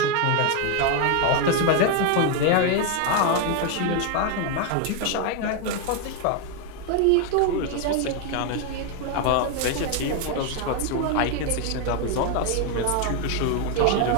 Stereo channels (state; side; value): different; both; correlation 0.01